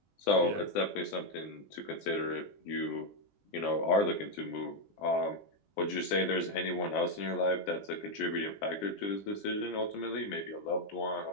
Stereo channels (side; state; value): right; late; 20 ms